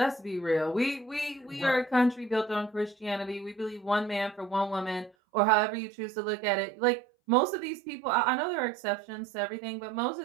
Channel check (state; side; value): drops out; left; at 5.1 s